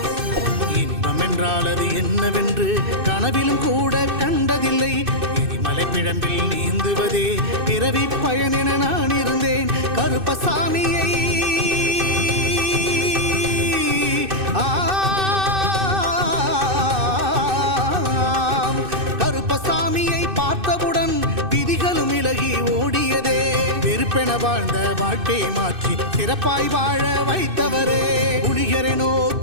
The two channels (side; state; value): left; late; 2.6 ms